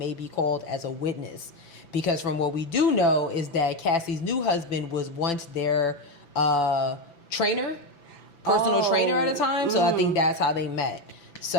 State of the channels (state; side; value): late; right; 5.9 ms